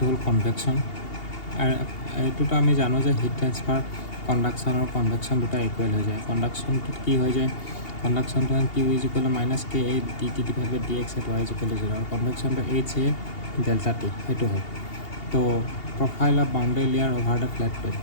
হ'ল কনভেকশ্যন। আৰু এইটোতো আমি জানো যে হিট ট্ৰেন্সফাৰ কণ্ডাকশ্যন আৰু কনভেকশ্যন দুটা ইকুৱেল হৈ যায়। কণ্ডাকশ্যনটোত কি হৈ যায়, কণ্ডাকশ্যনটো Q is equal to minus K A D T divide by D X at Y is equal to 0 আৰু কনভেকশ্যনটো এইচ এ ডেল্টা টি, সেইটো হয়। তো profile of boundary layer over the flat plate,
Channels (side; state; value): right; late; 2.8 ms